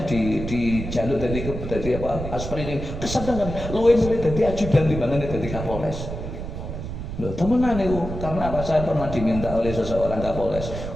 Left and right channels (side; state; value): right; noise; rumble, 7 dB below the sound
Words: dari apa aspri ini kesenangan luwih milih dadi ajudan timbangane dadi Kapolres. Loh, temenan itu. Karena apa? Saya pernah diminta oleh seseorang Kapolres